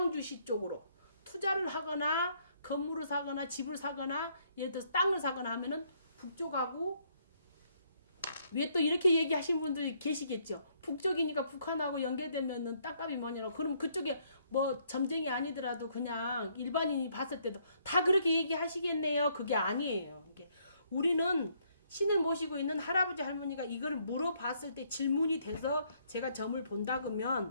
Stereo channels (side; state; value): both; inverted; correlation -0.69